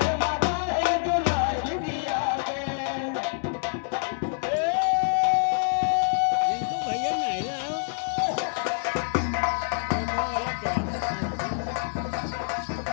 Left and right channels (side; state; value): right; silent; digital silence